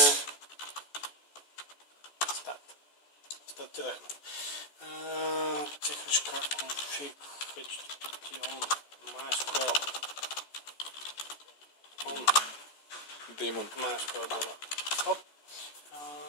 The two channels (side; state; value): right; late; 14 ms